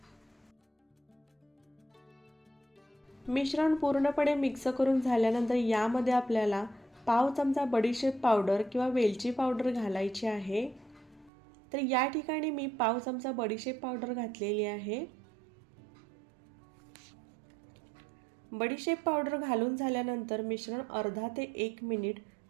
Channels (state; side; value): drops out; left; at 11.3 s